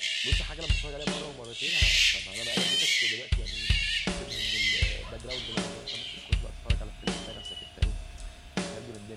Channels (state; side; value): identical; both; correlation 1.00